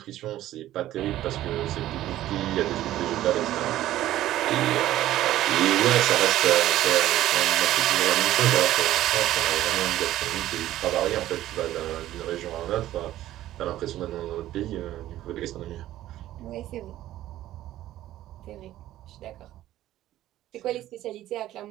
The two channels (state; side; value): quieter; left; 14.0 dB